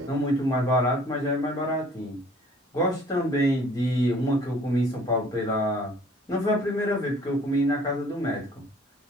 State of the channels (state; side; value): normal; both; correlation 0.54